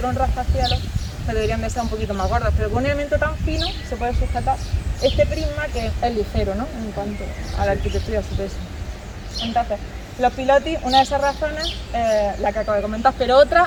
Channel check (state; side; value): identical; both; correlation 1.00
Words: un rascacielos, que deberían de ser un poquito más gordos, pero con un elemento tan fino se puede sujetar este prisma que es ligero, ¿no? En cuanto a la arquitectura y a su peso. Entonces, Los pilotis, una de esas razones, la que acabo de comentar, pero